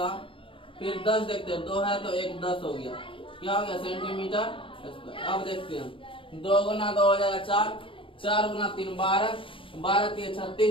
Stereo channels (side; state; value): right; late; 0.25 ms